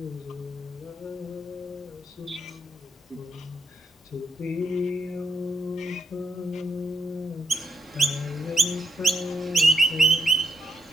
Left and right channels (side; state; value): both; normal; correlation 0.77